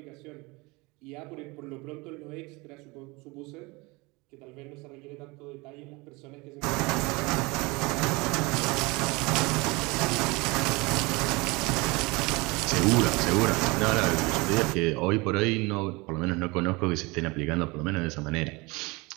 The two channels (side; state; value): left; quieter; 25.1 dB